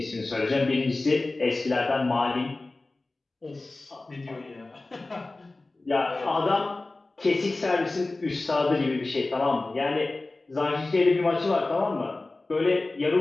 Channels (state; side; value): quieter; right; 3.1 dB